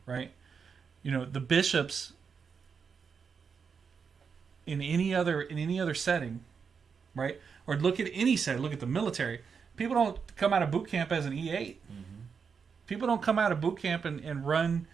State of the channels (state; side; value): quieter; left; 6.0 dB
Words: Right? The bishops in any other setting, right? Or look at any setting, look at the military. People don't come out of boot camp as an E8. People don't come out of boot camp and run,